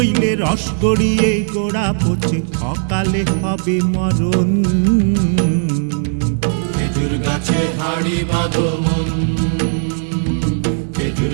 রস গড়িয়ে গোড়া পচে, অকালে হবে মরণ। খেজুর গাছে হাড়ি বাঁধো মন, খেজুর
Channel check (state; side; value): silent; left; digital silence